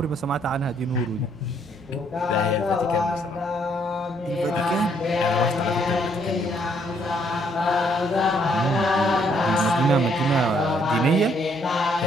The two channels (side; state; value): both; normal; correlation 0.69